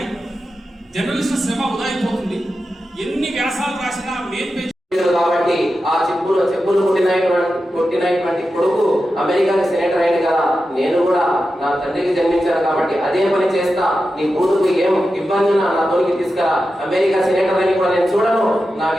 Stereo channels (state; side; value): normal; both; correlation 0.91